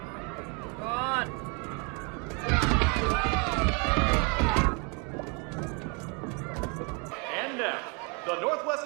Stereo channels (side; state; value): left; quieter; 33.9 dB